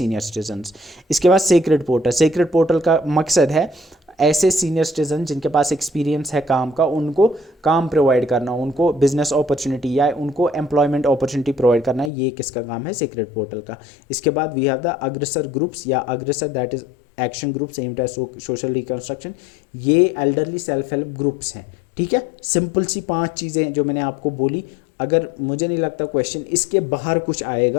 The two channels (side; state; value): right; drops out; at 12.1 s